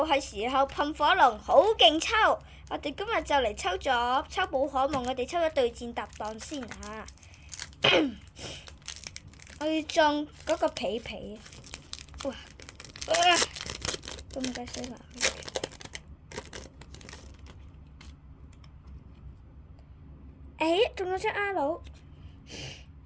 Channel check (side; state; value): both; identical; correlation 1.00